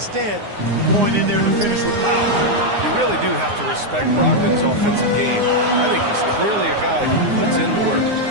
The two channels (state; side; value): late; left; 9.7 ms